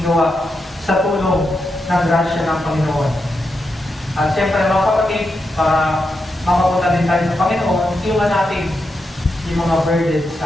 gawa sa tulong ng grasya ng Panginoon. At siyempre mga kapatid, para makapunta din tayo sa Panginoon, iwan natin yung mga burden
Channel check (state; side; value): normal; both; correlation 0.86